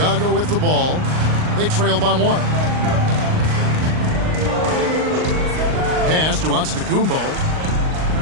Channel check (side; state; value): left; late; 39 ms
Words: with the ball. They trail by 1. Pass to Antetokounmpo.